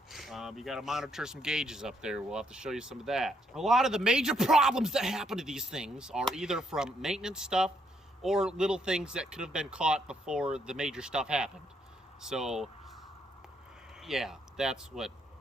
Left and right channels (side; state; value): both; normal; correlation 0.74